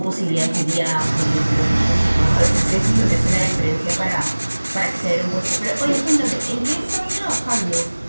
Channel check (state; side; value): inverted; both; correlation -1.00